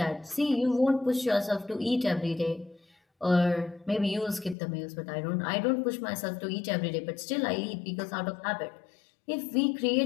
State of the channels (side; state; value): right; drops out; at 4.5 s